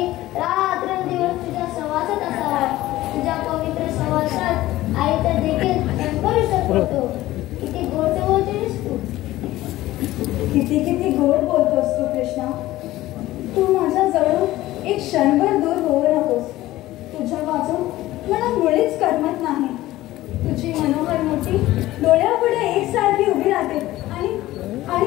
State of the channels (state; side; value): quieter; right; 16.2 dB